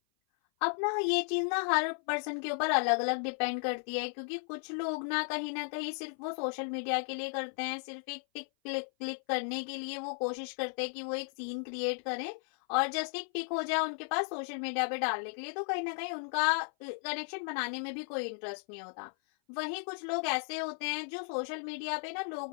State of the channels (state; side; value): silent; right; 55 dB below the other